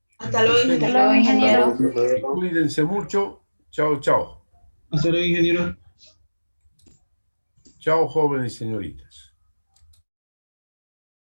Hasta luego, Hasta ingeniero. luego, ingeniero. Cuídense mucho. Chao, chao. Hasta luego, ingeniero. Chao, jóvenes y señoritas.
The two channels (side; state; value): both; inverted; correlation -1.00